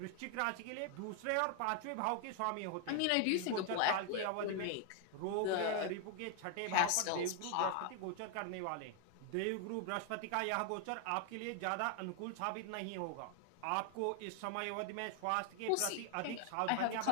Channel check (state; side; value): different; both; correlation 0.00